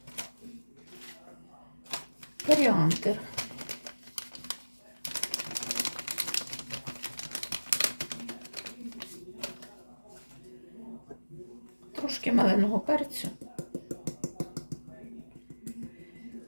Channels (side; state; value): both; inverted; correlation -1.00